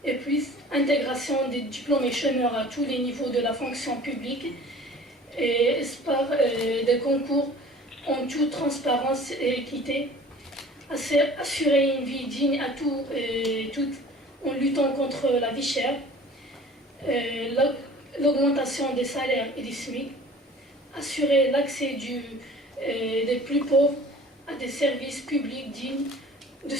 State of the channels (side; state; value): both; normal; correlation 0.46